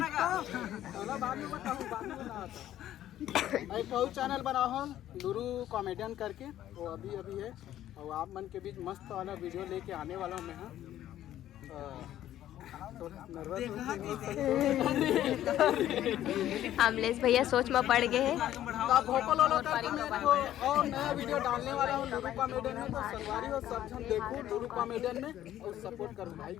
एक ठो चैनल बना हो लुरु कॉमेडियन करके वो अभी है और आप मन के बीच मस्त वाला वीडियो लेके आने वाला हूँ मैं। अमलेश भैया सोच में पड़ गए हैं और नया वीडियो डालने वाला हूँ लुरु कॉमेडियन में, तो संगवारी हो सब जन देखो लुरु कॉमेडियन में और सपोर्ट करो भाई।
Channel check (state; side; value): quieter; right; 12.4 dB